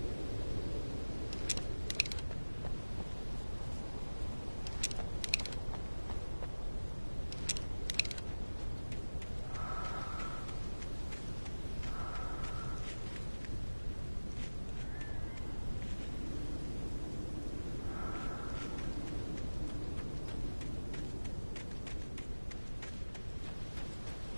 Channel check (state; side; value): inverted; both; correlation -1.00